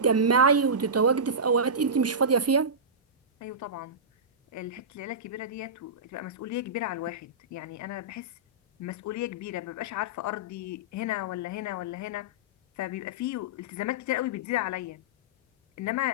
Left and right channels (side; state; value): both; normal; correlation -0.16